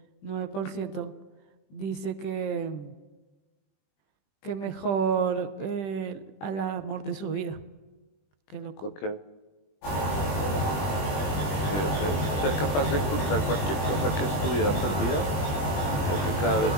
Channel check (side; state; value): right; late; 20 ms